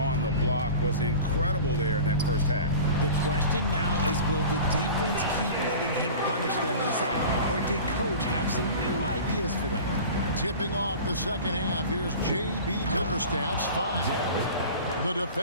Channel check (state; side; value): inverted; both; correlation -0.37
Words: the block was incredible there in that first half. The question now is, will the defense keep letting him punish them inside? Or did coach have some new ideas for them? Tipping off the second half, here's J.B. Bickerstaff's 5. The